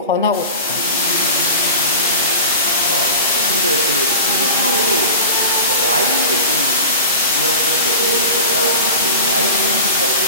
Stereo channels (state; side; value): inverted; both; correlation -0.32